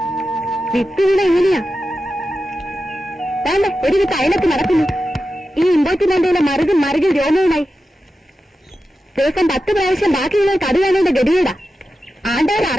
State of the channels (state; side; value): normal; both; correlation 0.91